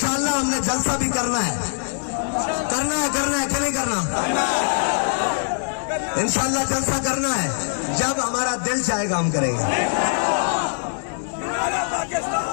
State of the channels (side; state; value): right; silent; 63 dB below the other